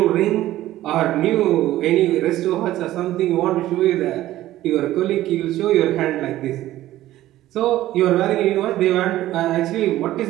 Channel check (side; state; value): left; quieter; 14.8 dB